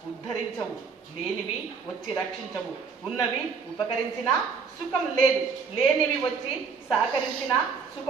ఉద్ధరించవు, లేనివి వచ్చి రక్షించవు, ఉన్నవి ఉపకరించినా సుఖం లేదు, లేనివి వచ్చి సహకరించిన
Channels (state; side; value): quieter; left; 5.5 dB